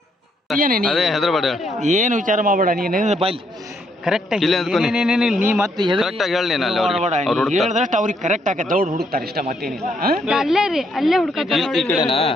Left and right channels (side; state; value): both; normal; correlation 0.73